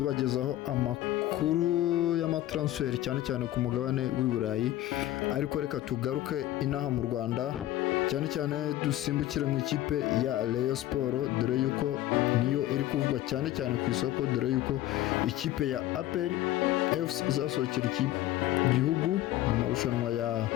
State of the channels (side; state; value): right; quieter; 14.5 dB